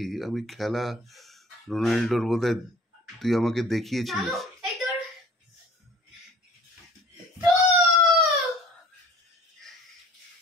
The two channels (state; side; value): normal; both; correlation 0.50